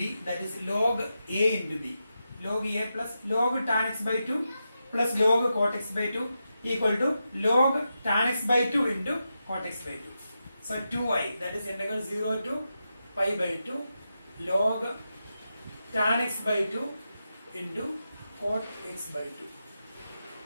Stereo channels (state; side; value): inverted; both; correlation -0.88